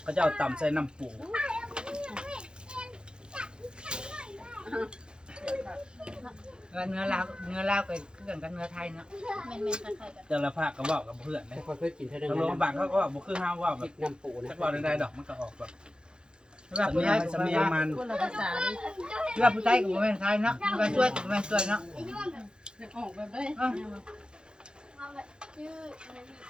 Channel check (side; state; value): left; late; 0.049 ms